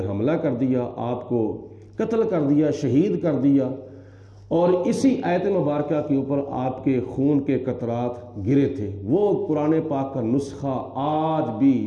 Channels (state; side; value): identical; both; correlation 1.00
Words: حملہ کر دیا، آپ کو قتل کر دیا، شہید کر دیا، اور اسی آیت مبارکہ کے اوپر آپ کے خون کے قطرات گرے تھے۔ وہ قرآن پاک کا نسخہ آج بھی